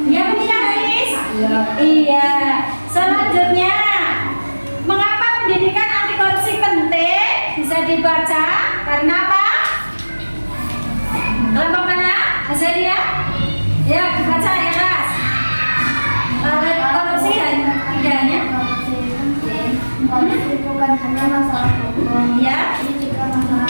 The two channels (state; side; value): inverted; both; correlation -1.00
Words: Ya benar Haris? Iya. Selanjutnya, mengapa pendidikan anti korupsi penting? Bisa dibaca karena apa? Kelompok mana? Azaria? Ya, dibaca ya Ras. Korupsi tidak hanya Korupsi bukan hanya masalah hukum, ya. ini juga